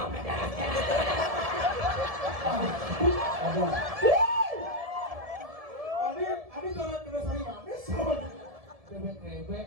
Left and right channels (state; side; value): late; left; 1.7 ms